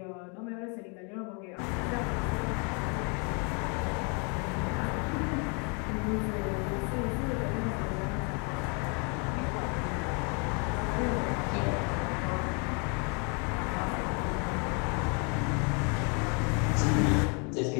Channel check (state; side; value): quieter; right; 35.1 dB